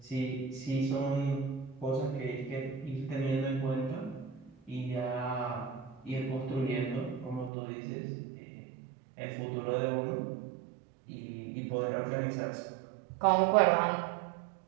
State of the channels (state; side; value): drops out; left; at 7.5 s